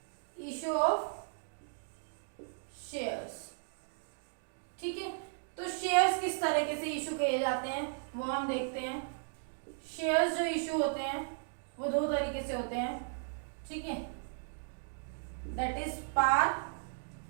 इश्यू ऑफ शेयर्स, ठीक है। तो शेयर्स किस तरीके से इशू किए जाते हैं वो हम देखते हैं। शेयर्स जो इशू होते हैं वो 2 तरीके से होते हैं, ठीक है, दैट इज पार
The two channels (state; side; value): silent; left; digital silence